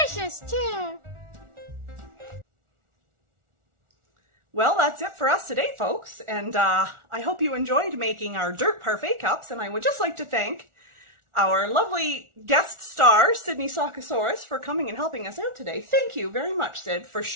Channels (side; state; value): left; late; 1.4 ms